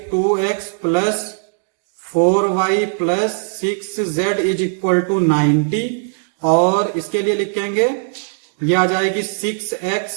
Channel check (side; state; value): left; silent; digital silence